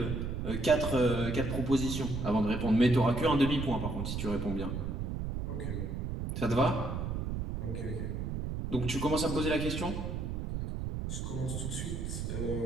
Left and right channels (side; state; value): right; noise; rumble, 3 dB below the sound